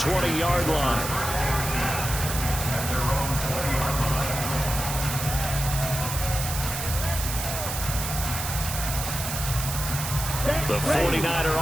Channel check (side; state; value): right; noise; hiss, 5 dB below the sound